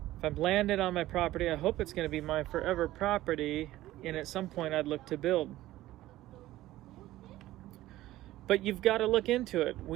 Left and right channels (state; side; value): quieter; left; 15.7 dB